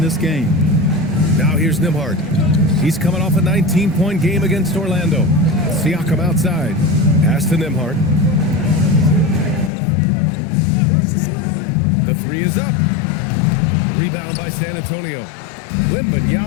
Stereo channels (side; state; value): right; drops out; at 9.7 s